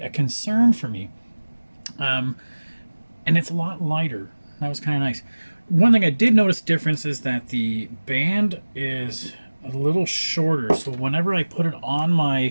a concern for me. And it's a lot lighter. That was kind of nice. One thing I did notice difference is that the band is a little shorter. So whenever I put it on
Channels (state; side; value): inverted; both; correlation -1.00